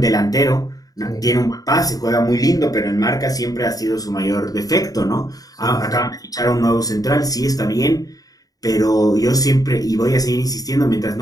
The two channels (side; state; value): right; late; 0.18 ms